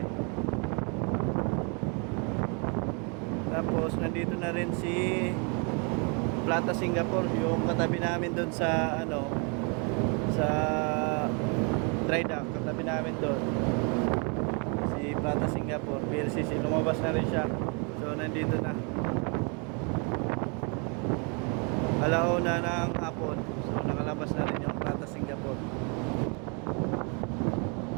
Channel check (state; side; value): quieter; left; 34.8 dB